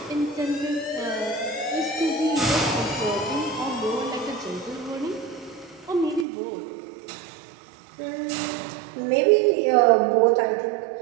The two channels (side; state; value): left; drops out; at 6.2 s